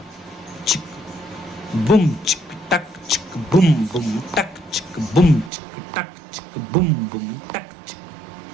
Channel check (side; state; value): left; drops out; at 5.5 s